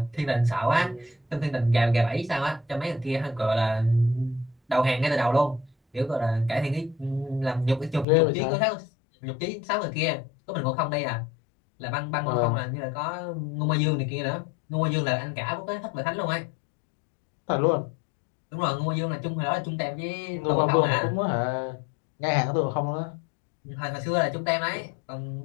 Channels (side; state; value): right; drops out; at 8.1 s